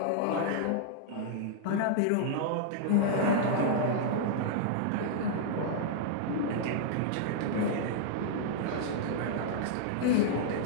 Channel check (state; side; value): different; both; correlation -0.01